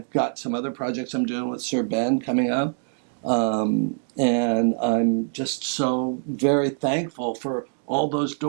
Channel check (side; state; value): left; silent; 62 dB below the other